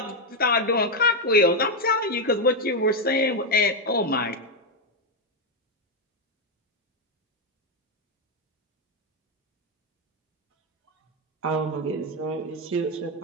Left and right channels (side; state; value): both; normal; correlation 0.03